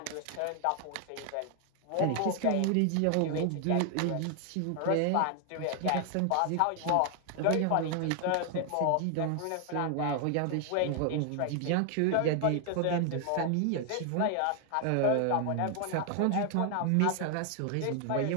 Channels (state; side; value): different; both; correlation 0.00